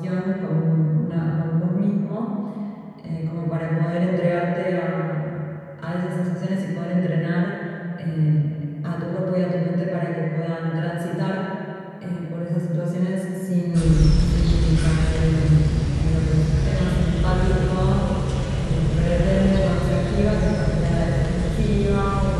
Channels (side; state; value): both; identical; correlation 1.00